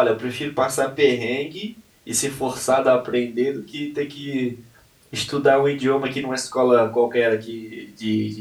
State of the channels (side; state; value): both; identical; correlation 1.00